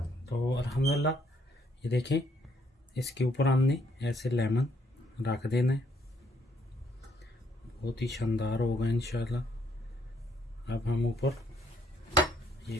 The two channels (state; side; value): normal; both; correlation 0.69